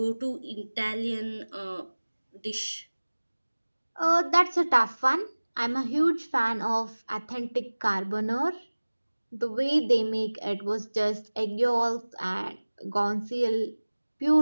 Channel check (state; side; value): inverted; both; correlation -1.00